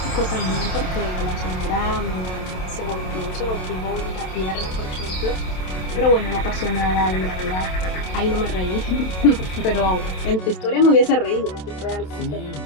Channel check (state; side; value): late; right; 27 ms